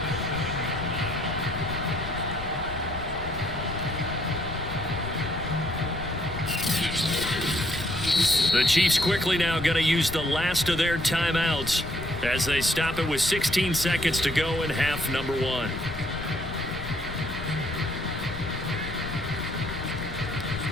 The Chiefs quickly now going to use the last of their timeouts as they stop it with 16 seconds to go in half number 1.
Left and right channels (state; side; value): noise; left; rumble, 10 dB below the sound